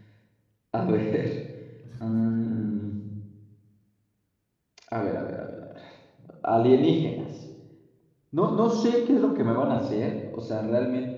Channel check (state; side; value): identical; both; correlation 1.00